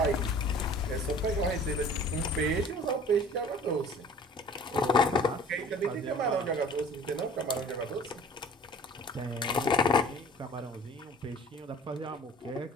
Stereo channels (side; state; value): both; normal; correlation 0.47